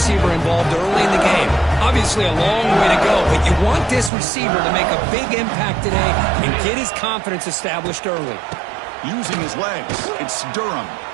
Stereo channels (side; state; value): left; drops out; at 4.1 s